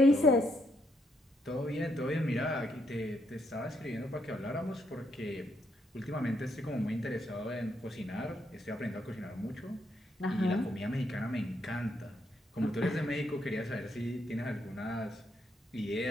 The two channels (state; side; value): normal; both; correlation 0.76